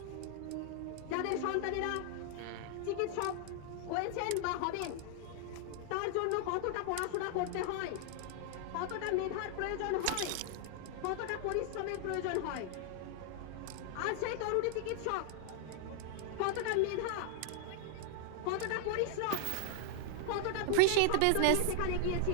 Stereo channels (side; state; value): both; different; correlation 0.00